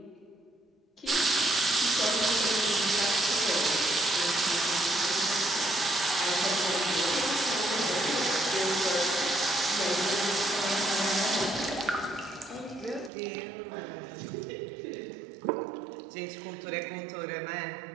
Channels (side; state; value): left; drops out; at 13.1 s